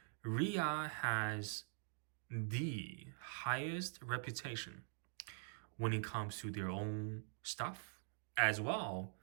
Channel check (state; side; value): silent; left; digital silence